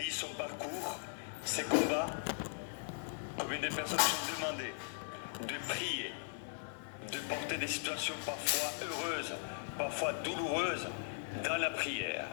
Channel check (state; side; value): silent; right; 52 dB below the other